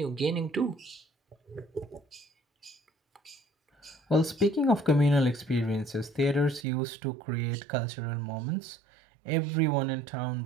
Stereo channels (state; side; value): drops out; left; at 6.7 s